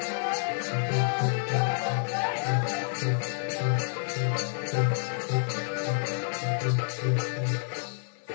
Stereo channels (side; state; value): right; silent; 59 dB below the other